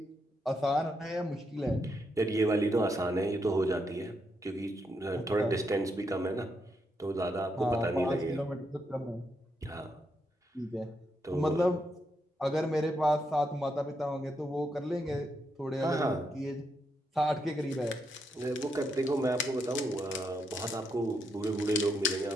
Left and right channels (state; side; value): normal; both; correlation 0.80